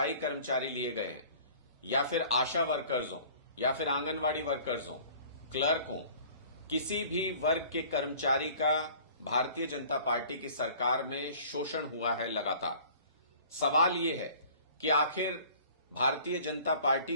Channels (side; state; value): both; inverted; correlation -0.49